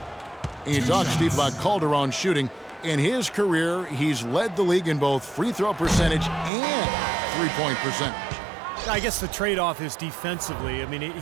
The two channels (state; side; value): drops out; left; at 6.5 s